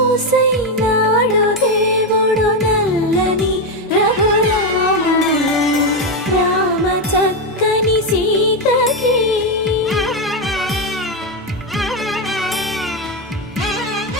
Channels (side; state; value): both; normal; correlation 0.08